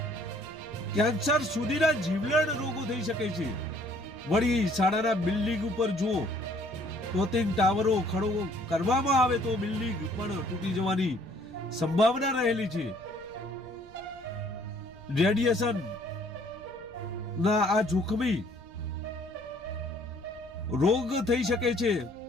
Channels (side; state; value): right; noise; rumble, 23 dB below the sound